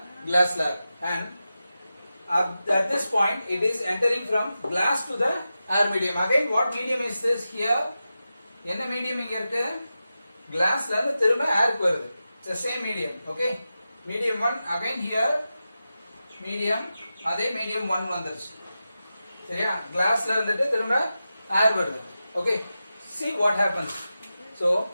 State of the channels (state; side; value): inverted; both; correlation -0.92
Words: glass slab and at this point it is entering from glass to the air medium. Again what medium is this here? என்ன medium இங்க இருக்கு? glass la திரும்ப air வருது. It's the same medium. Okay, medium 1 again here medium அதே medium 1 வந்துருச்சு. சரியா, glassல இருந்துட்டு திரும்ப air வருது. Okay, see what happens. So